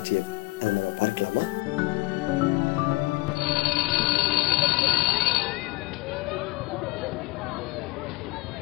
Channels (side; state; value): right; quieter; 22.6 dB